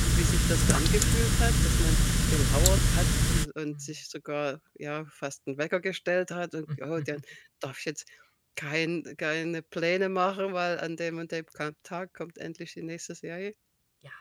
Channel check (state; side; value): identical; both; correlation 1.00